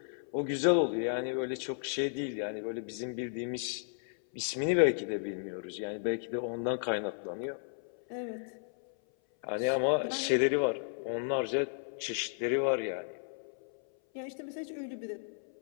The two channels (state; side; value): silent; right; 55 dB below the other